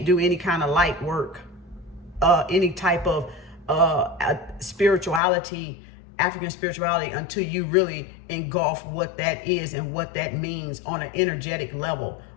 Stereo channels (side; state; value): right; drops out; at 5.2 s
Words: do any kind of light work, any type of spirituality, African spirituality, until you really engulf what that is and what that means on an energetic level,